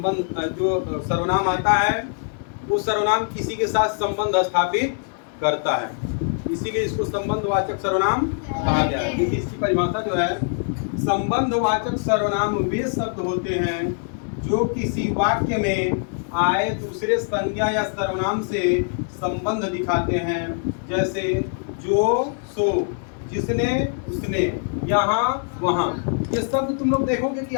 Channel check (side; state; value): right; silent; 56 dB below the other